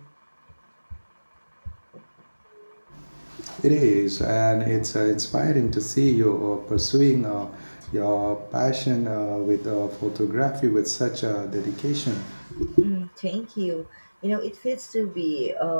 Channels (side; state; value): both; inverted; correlation -1.00